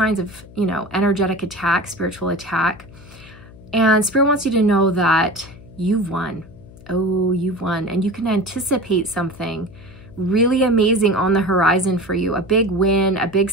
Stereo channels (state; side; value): noise; left; hum, 20 dB below the sound